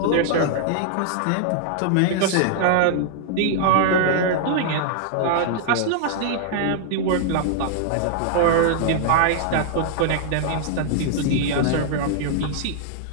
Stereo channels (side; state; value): both; different; correlation -0.01